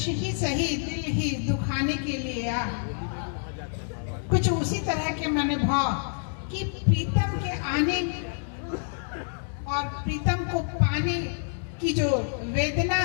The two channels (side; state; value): right; silent; digital silence